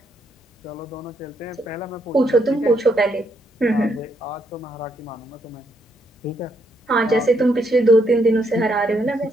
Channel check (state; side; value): normal; both; correlation 0.75